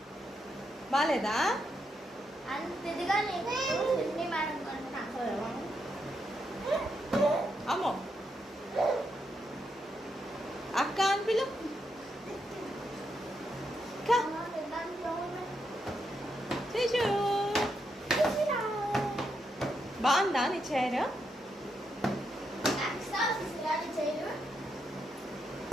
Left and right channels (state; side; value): normal; both; correlation 0.81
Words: బాగాలేదా? అమ్మో అక్క అని పిలు. శిశు బాగుందా నీ చైర్?